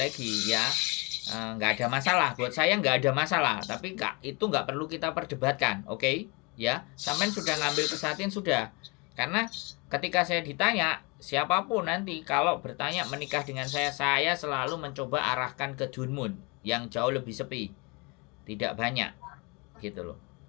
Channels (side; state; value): right; quieter; 29.2 dB